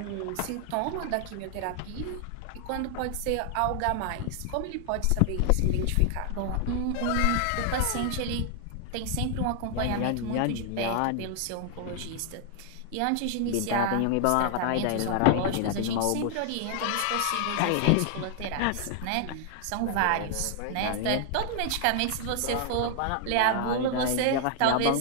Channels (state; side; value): different; both; correlation 0.00